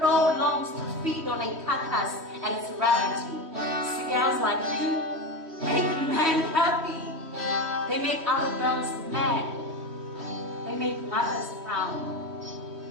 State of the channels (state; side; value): late; left; 3.1 ms